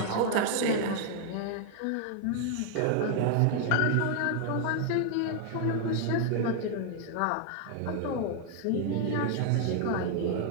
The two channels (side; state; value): both; different; correlation 0.00